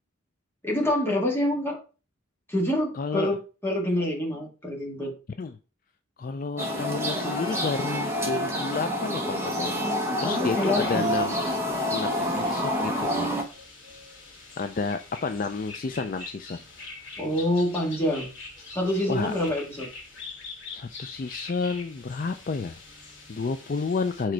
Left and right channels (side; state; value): both; normal; correlation 0.40